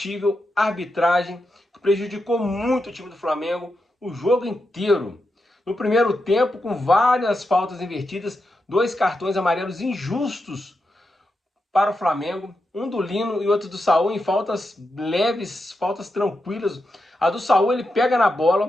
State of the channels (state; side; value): normal; both; correlation 0.87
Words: arbitragem que prejudicou muito o time do Flamengo o jogo inteiro. No primeiro tempo, com várias faltas invertidas, dois cartões amarelos injustos para o Flamengo, um do Lino e outro do Saul em faltas leves, faltas tranquilas. A do Saul ele pega na